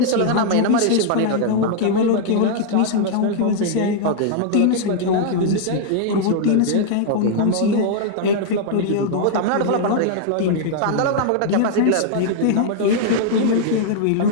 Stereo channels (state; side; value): different; both; correlation -0.01